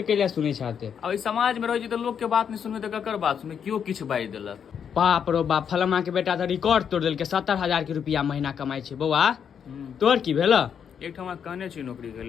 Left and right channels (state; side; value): quieter; right; 7.7 dB